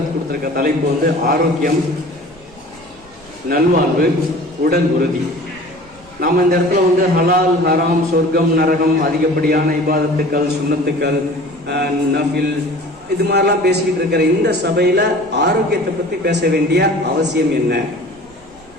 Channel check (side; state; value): right; noise; rumble, 26 dB below the sound